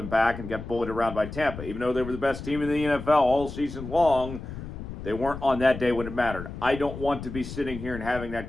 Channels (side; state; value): left; noise; rumble, 10 dB below the sound